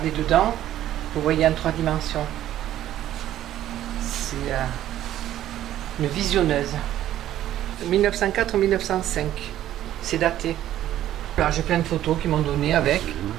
dedans, vous voyez en 3 dimensions. C'est une visionneuse. 1904-1905. C'est daté. Là, j'ai plein de photos qu'ils m'ont donné avec.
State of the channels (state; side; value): quieter; left; 12.6 dB